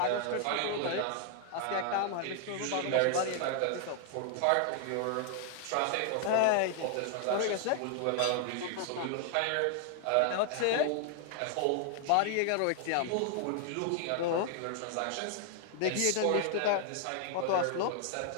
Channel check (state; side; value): different; both; correlation 0.00